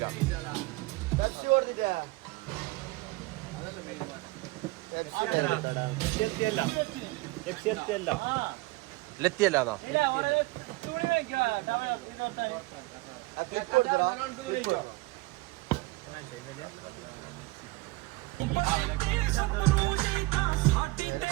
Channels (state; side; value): quieter; left; 22.2 dB